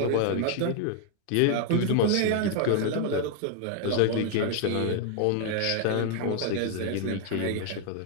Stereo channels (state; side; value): different; both; correlation 0.00